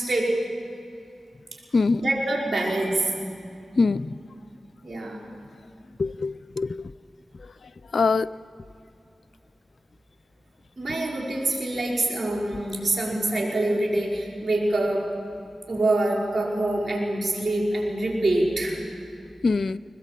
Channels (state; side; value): normal; both; correlation 0.91